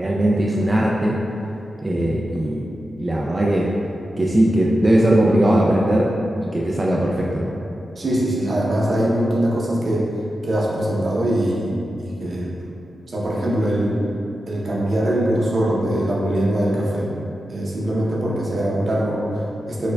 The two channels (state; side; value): normal; both; correlation 0.91